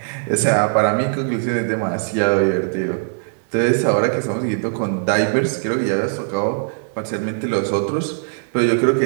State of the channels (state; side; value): silent; left; 58 dB below the other